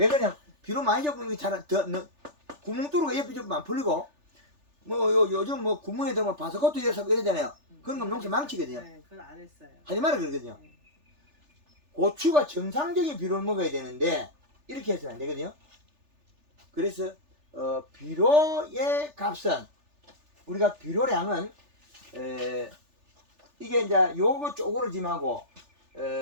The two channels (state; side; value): late; left; 3.4 ms